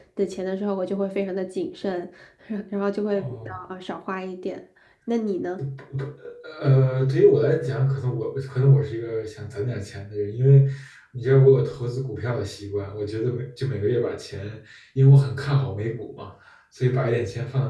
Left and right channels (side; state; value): both; identical; correlation 1.00